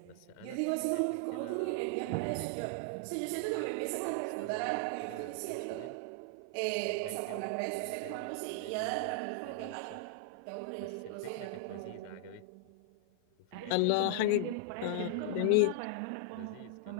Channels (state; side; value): different; both; correlation 0.00